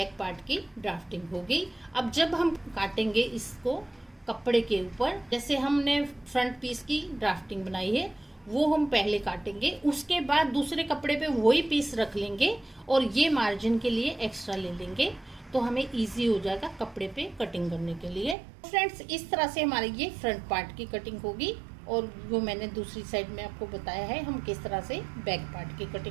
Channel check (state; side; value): drops out; left; at 18.4 s